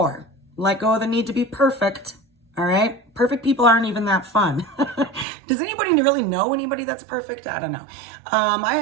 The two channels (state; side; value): drops out; left; at 5.2 s